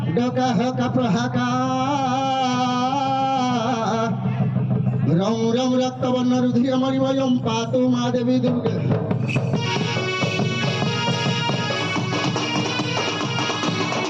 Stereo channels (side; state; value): both; identical; correlation 1.00